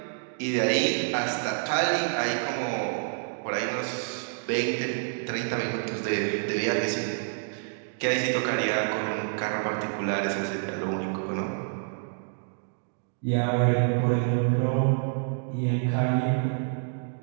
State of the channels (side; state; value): left; silent; digital silence